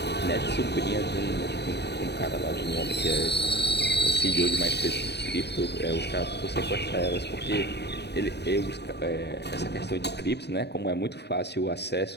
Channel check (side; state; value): right; late; 0.49 ms